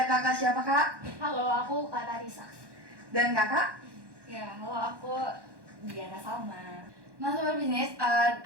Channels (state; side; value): late; left; 1.1 ms